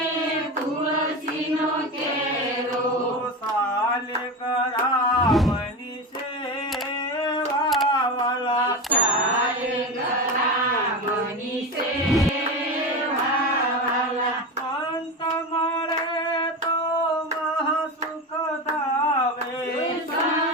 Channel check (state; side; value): normal; both; correlation 0.22